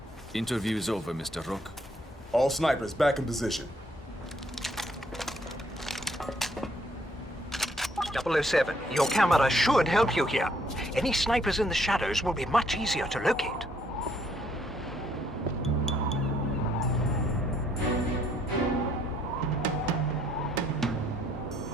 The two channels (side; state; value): both; normal; correlation 0.68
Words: Interview is over, Mr. Rook. All snipers back in position. 007, your camera should help you here. Any snipers in the shadows will be much easier to locate.